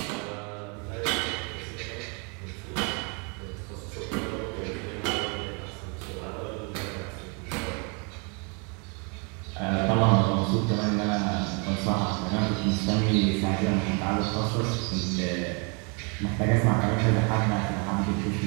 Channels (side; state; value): left; quieter; 34.0 dB